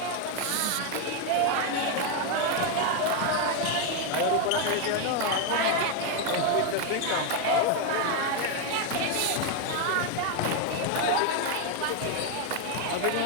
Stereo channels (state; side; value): different; both; correlation 0.02